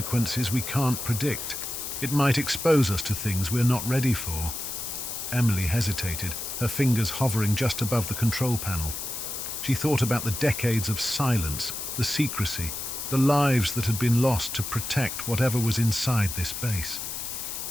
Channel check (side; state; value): left; noise; hiss, 6 dB below the sound